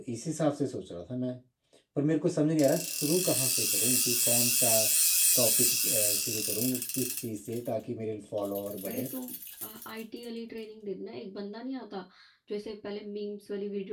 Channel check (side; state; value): both; identical; correlation 1.00